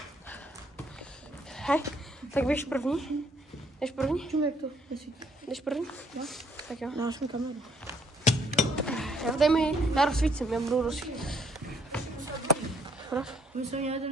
Hej, tak běž první. Jdeš první? Čum, jak to? Jdeš první? Jo. Tak jo. Dáš mi kameru. Já rozsvítím, já budu rozsvítit. My jsme měli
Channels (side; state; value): both; normal; correlation 0.67